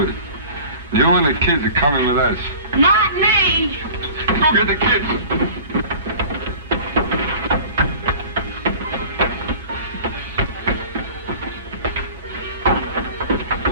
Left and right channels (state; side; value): inverted; both; correlation -0.42